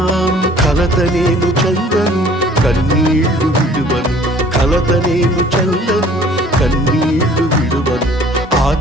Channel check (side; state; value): both; normal; correlation 0.53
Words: కలత నేను చందను కన్నీళ్లు విడువను, కలత నేను చందను కన్నీళ్లు విడువను.